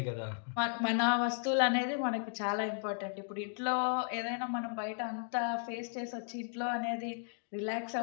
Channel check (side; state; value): right; silent; 54 dB below the other